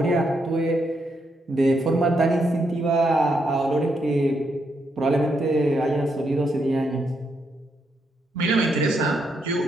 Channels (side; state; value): both; normal; correlation 0.79